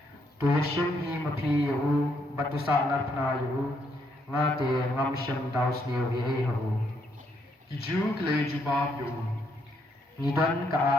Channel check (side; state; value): both; normal; correlation 0.74